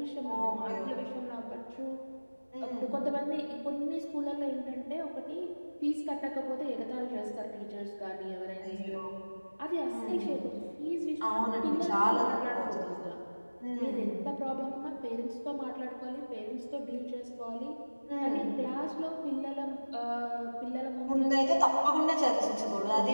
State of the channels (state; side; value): inverted; both; correlation -1.00